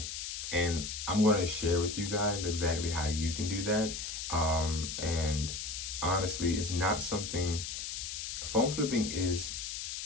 And I'm going to share with you guys exactly how you can do that. And honestly, it's not something, phone flipping is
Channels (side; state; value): left; noise; hiss, 5 dB below the sound